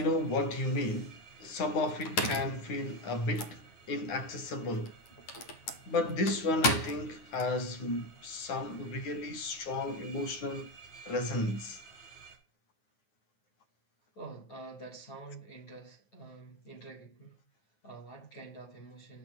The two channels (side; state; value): right; late; 9.3 ms